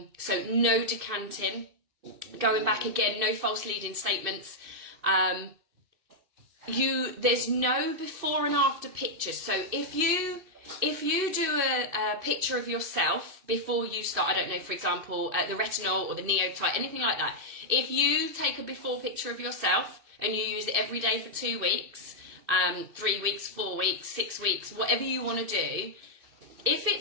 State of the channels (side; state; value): left; late; 2.7 ms